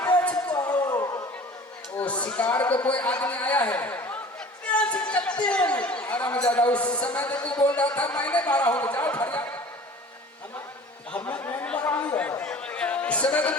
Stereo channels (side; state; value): both; normal; correlation 0.44